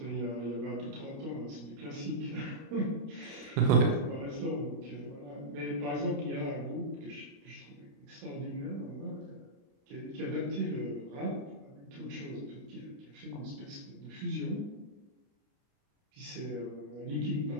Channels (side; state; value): left; late; 29 ms